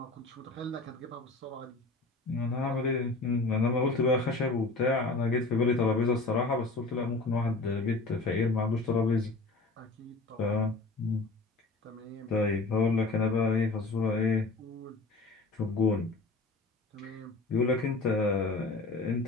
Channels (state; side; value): quieter; right; 3.4 dB